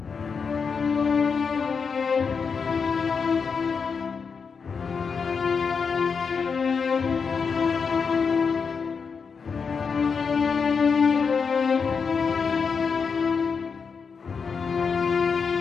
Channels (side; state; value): right; quieter; 5.7 dB